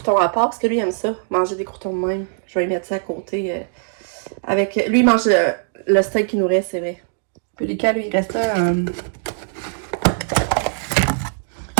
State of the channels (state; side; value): silent; left; digital silence